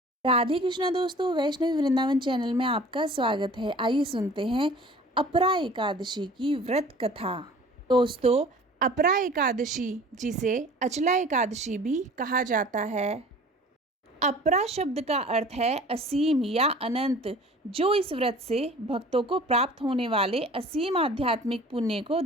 राधे कृष्णा दोस्तों, वैष्णवी वृंदावन चैनल में आपका स्वागत है। आइए सुनते हैं अपरा एकादशी की व्रत कथा। दोस्तों, अपरा एकादशी जिसे अचला एकादशी भी कहा जाता है। अपरा शब्द का अर्थ है असीम या अनंत, जो इस व्रत से भक्तों को प्राप्त होने वाले असीम आध्यात्मिक पुण्य को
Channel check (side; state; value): both; normal; correlation 0.46